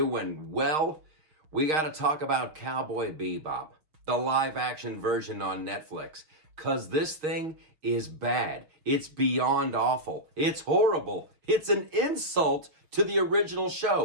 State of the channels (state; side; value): late; left; 6.4 ms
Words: well. We got to talk about Cowboy Bebop, the live-action version on Netflix, because this thing is bad. It's beyond awful. It's horrible. It's an insult to the original